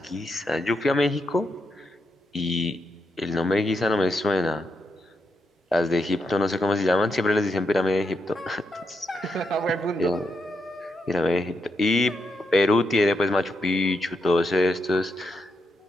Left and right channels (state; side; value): normal; both; correlation 0.82